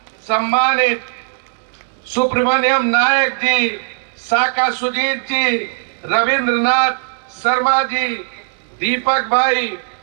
सम्मानित सुब्रमण्यम नायक जी, साका सुजीत जी, रविंद्रनाथ शर्मा जी, दीपक भाई,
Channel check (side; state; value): left; silent; digital silence